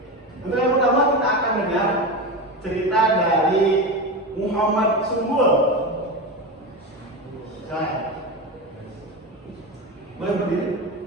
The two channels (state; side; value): normal; both; correlation 0.20